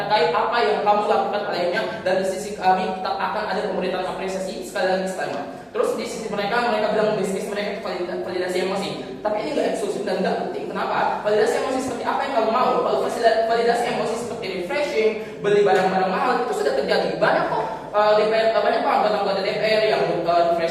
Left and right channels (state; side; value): identical; both; correlation 1.00